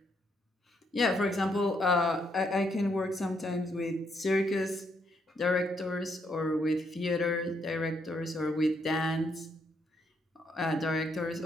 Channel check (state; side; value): normal; both; correlation 0.74